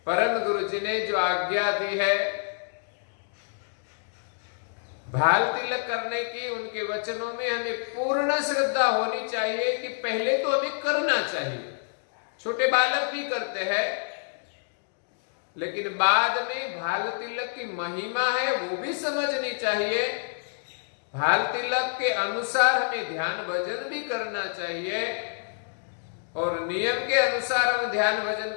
परम गुरु जी ने जो आज्ञा दी है भाल तिलक करने की, उनके वचनों में हमें पूर्ण श्रद्धा होनी चाहिए कि पहले तो हमें करना चाहिए। छोटे बालक भी करते हैं, लेकिन बाद में भाल तिलक की महिमा है वो भी समझनी चाहिए। भाल तिलक के अनुसार हमें ध्यान भजन भी करना चाहिए, और नियम के अनुसार हम ध्यान भजन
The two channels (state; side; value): silent; right; digital silence